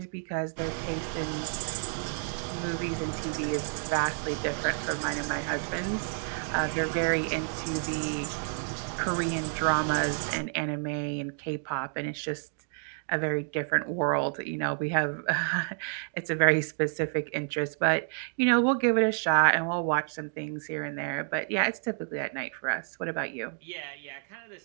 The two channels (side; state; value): left; silent; 58 dB below the other